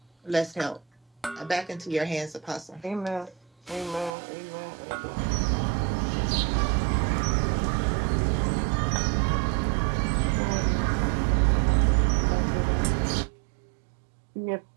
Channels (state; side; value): drops out; left; at 4.1 s